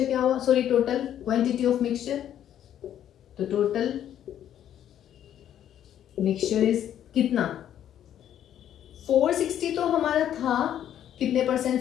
क्या हुआ, sorry total quantity of mixture. तो टोटल मिक्सचर इज कितना, 460 तो हमारा था कितने परसेंट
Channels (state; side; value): quieter; right; 10.6 dB